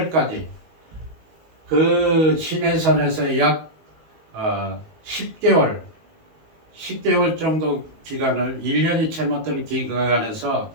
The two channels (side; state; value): left; late; 19 ms